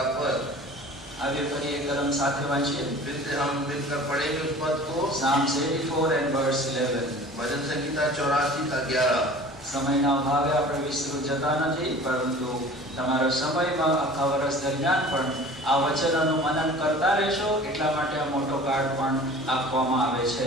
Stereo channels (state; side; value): normal; both; correlation 0.43